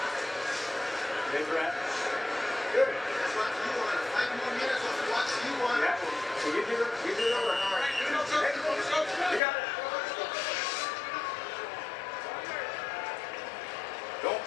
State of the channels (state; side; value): drops out; right; at 9.4 s